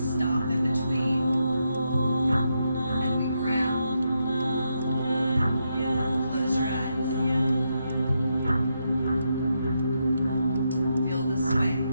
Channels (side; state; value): both; inverted; correlation -0.82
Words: in between and we ground. Close your eyes. Feel the sway.